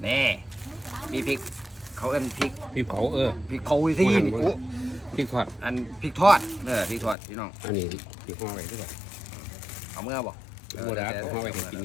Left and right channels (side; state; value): right; drops out; at 7.2 s